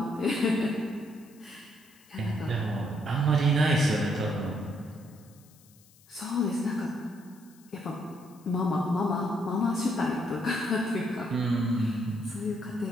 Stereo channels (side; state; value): left; noise; hiss, 27 dB below the sound